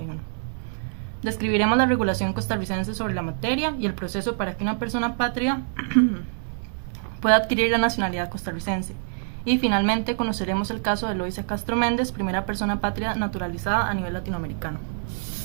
Describiremos la regulación costarricense sobre la materia y el proceso para que una persona apátrida pueda adquirir la nacionalidad costarricense. Y finalmente conoceremos el caso de Eloísa Castro Méndez, primera persona apátrida naturalizada a nivel latinoamericano.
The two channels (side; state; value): left; silent; digital silence